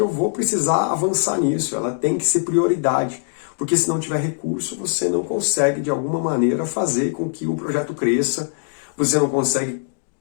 vou precisar avançar nisso, ela tem que ser prioridade, porque se não tiver recurso, você não consegue de alguma maneira fazer com que o projeto cresça, você não consegue,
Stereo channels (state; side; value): silent; right; digital silence